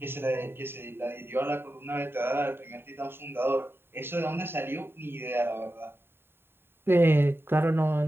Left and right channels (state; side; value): late; left; 0.11 ms